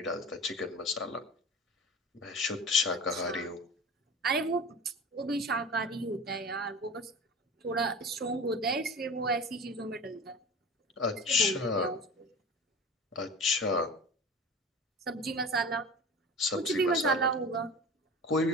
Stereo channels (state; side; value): normal; both; correlation 0.35